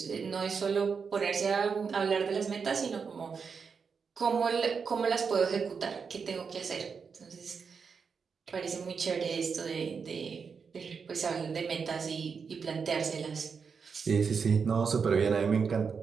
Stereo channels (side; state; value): left; quieter; 5.8 dB